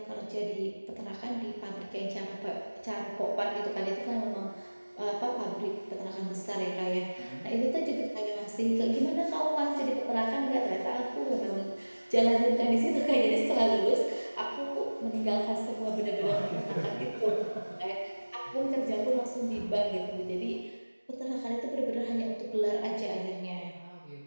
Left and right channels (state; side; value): inverted; both; correlation -1.00